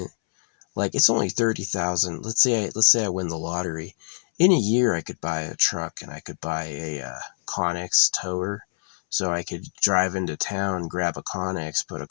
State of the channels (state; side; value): silent; right; 62 dB below the other